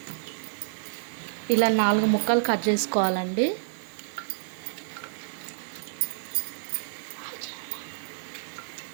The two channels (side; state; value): left; silent; 59 dB below the other